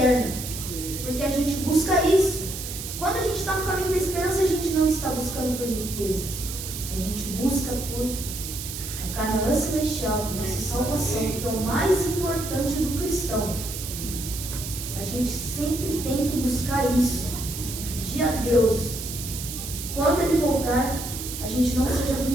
Porque a gente busca isso. Quando a gente está no caminho da esperança, a gente não está buscando por riquezas. A gente busca por a Canaã celestial, nossa salvação, que é o mais importante do cristão. A gente sempre tem que buscar isso. Pedir a Deus que quando Ele voltar, a gente não seja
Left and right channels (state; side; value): noise; right; hiss, 8 dB below the sound